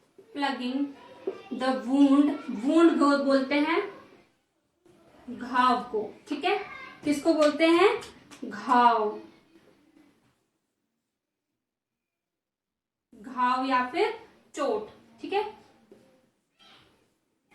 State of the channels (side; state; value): both; identical; correlation 1.00